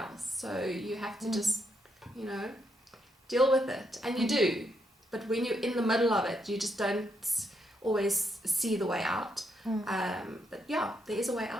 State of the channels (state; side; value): normal; both; correlation 0.78